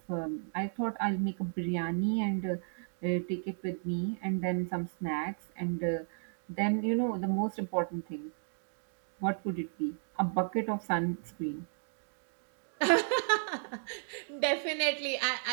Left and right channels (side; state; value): left; silent; digital silence